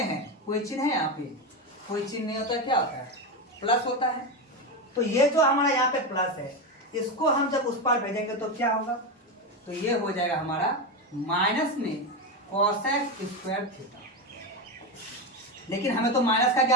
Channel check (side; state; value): both; normal; correlation 0.14